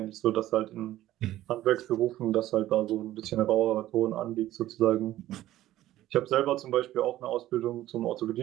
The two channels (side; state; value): left; quieter; 14.4 dB